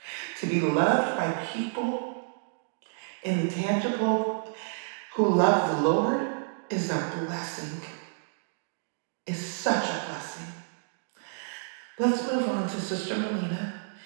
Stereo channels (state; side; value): silent; left; digital silence